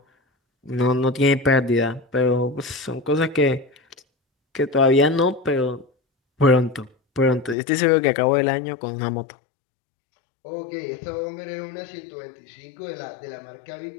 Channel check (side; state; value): right; drops out; at 7.6 s